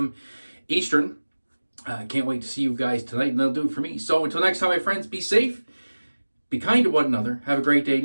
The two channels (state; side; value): inverted; both; correlation -1.00